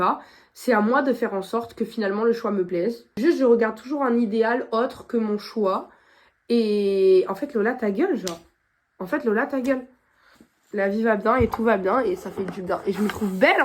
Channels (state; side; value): identical; both; correlation 1.00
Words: c'est à moi de faire en sorte que finalement le choix me plaise. Juste, je regarde toujours un idéal autre que mon choix. Et en fait, Lola, ta gueule, genre. En fait, Lola, ta gueule. La vie va bien et tout va bien et ça fait du bien. Et je me trouve belle